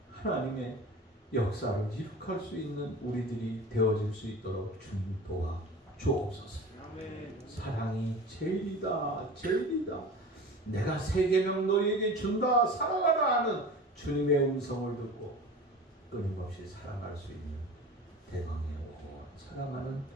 하나님의 역사를 이룩할 수 있는 우리들이 되어질 수 있도록 주님 도와 주옵소서. 사랑이 제일이다, 제일이다. 내가 세 계명 너희에게 준다, 사랑하라 하는 주님의 음성을 듣고 끊임없이 살아갈 수 있는 대광의 살아가는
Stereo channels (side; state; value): both; normal; correlation 0.36